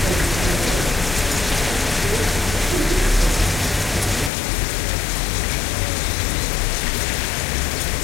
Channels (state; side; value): drops out; right; at 4.3 s